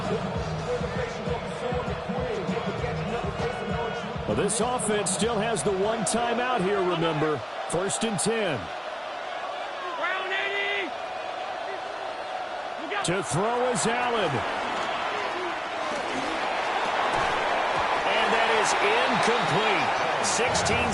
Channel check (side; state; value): both; identical; correlation 1.00